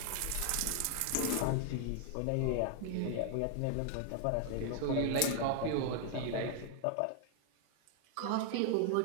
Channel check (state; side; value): different; both; correlation 0.00